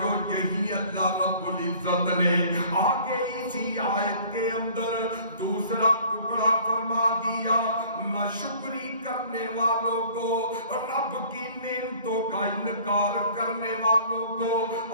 یہی اللہ رب العزت نے آگے اسی آیت کے اندر دوسرا ٹکڑا فرما دیا، ناشکری کرنے والوں کو، رب کی نعمتوں کا انکار کرنے والوں کو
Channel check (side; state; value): both; inverted; correlation -0.52